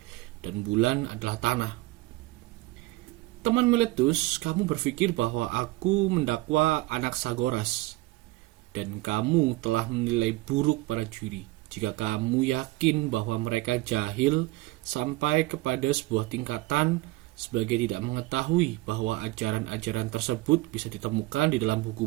dan bulan adalah tanah. Teman Miletus, kamu berpikir bahwa aku mendakwa Anaxagoras, dan kamu telah menilai buruk para juri jika kamu yakin bahwa mereka jahil sampai kepada sebuah tingkatan sebagai tidak mengetahui bahwa ajaran-ajaran tersebut bisa ditemukan di dalam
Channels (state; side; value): quieter; left; 20.2 dB